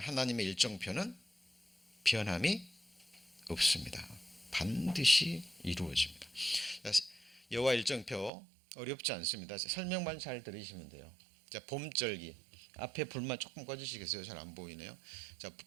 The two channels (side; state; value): left; drops out; at 8.3 s